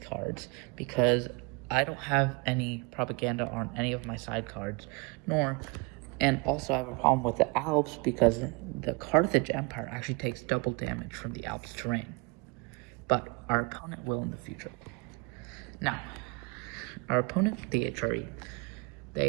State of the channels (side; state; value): left; quieter; 28.9 dB